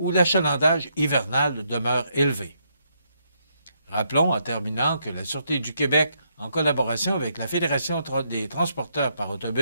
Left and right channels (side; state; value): both; inverted; correlation -0.76